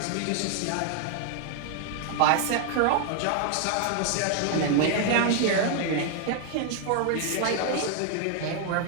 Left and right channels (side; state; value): both; different; correlation 0.00